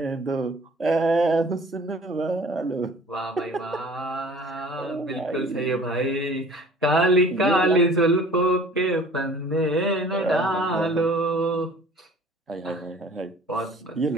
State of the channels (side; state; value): both; normal; correlation 0.49